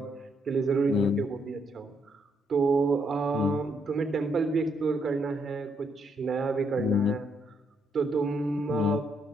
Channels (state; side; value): normal; both; correlation 0.75